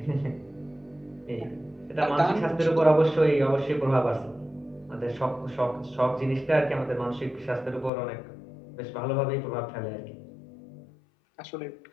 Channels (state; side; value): drops out; right; at 7.9 s